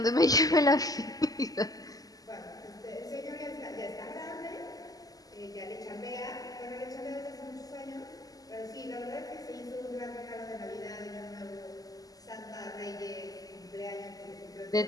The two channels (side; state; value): right; late; 0.17 ms